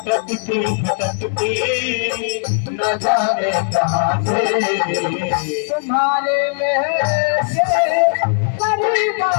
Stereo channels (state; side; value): silent; right; digital silence